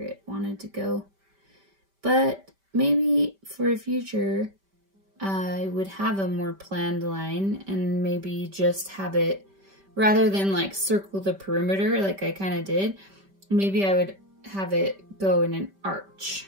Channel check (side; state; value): left; late; 5.1 ms